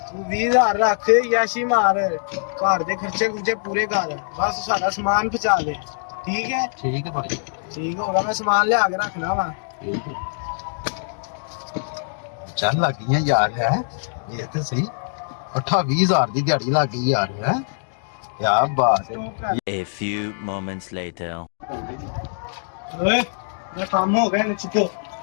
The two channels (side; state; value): right; silent; digital silence